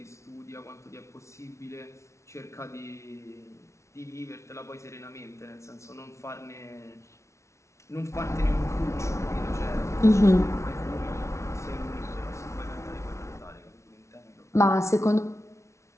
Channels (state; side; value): late; right; 0.13 ms